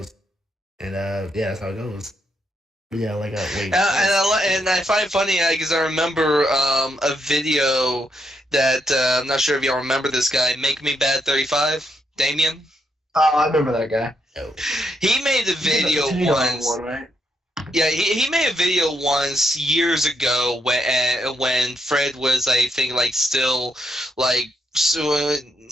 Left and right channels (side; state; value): both; normal; correlation 0.78